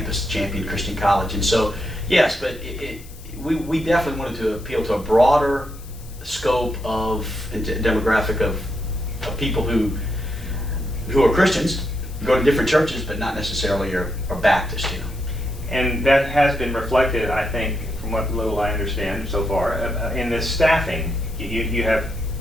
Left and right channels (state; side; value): noise; left; hiss, 22 dB below the sound